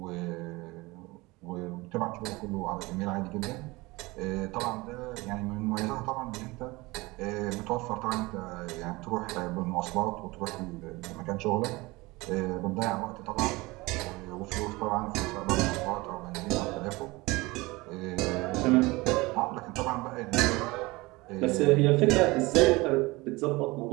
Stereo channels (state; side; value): quieter; left; 22.4 dB